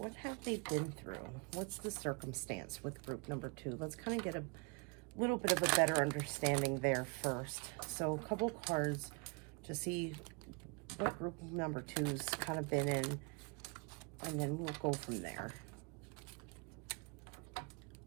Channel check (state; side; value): quieter; left; 32.3 dB